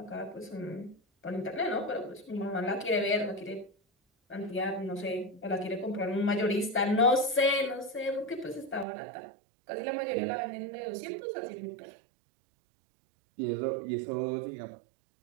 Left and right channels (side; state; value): left; drops out; at 8.8 s